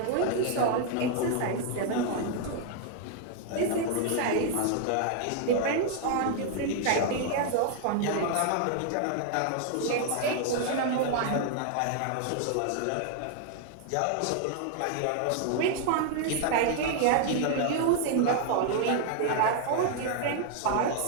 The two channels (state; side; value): different; both; correlation 0.00